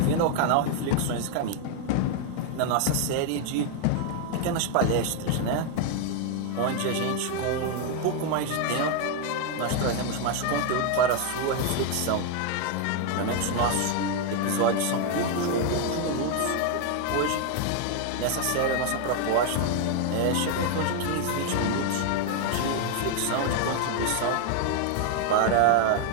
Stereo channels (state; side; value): different; both; correlation 0.01